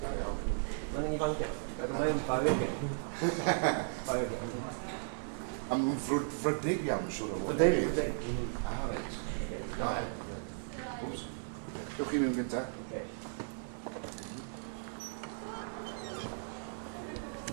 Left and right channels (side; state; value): left; silent; 54 dB below the other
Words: Mae'n ifancio, ac mae'n fawr gen. A mae'n frydig iawn, siwr o fod. Frydig. Reit. Wws. Dewch chi mewn gynta.